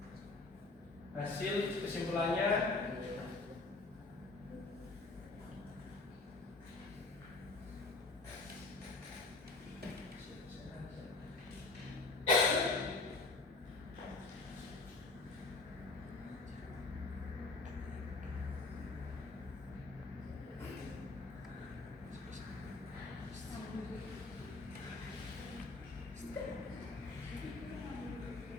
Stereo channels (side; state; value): right; quieter; 3.5 dB